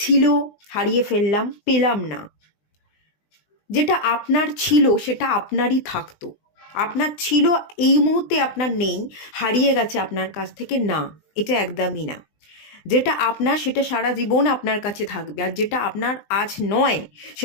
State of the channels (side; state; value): right; late; 20 ms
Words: হারিয়ে ফেললাম, পেলাম না। যেটা আপনার ছিল সেটা আপনারই থাকতো, আপনার ছিল, এই মুহূর্তে আপনার নেই, হারিয়ে গেছে আপনার কাছ থেকে, না, এটা একদমই না। যেটা আপনার সেটা সারা জীবন আপনার কাছে থাকবে, আর যেটা আপনার আজ নয়